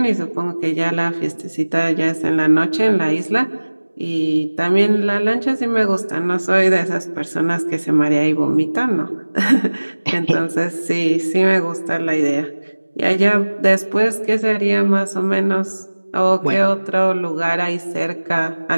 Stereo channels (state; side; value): inverted; both; correlation -1.00